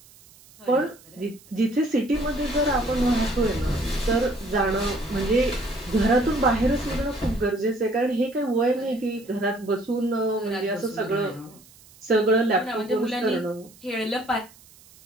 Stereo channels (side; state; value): right; noise; hiss, 25 dB below the sound